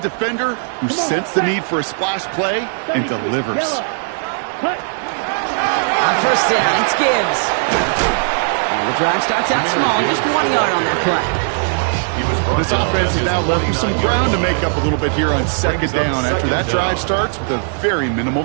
who sensed the need for a splash play and delivers. On 1st down, it's Gibbs. And the drive starts out small, just 1 yard on that play. This offense is now left with some ground to make up a little bit here on 2nd down after that drive starts with a very minimal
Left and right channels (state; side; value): silent; left; 68 dB below the other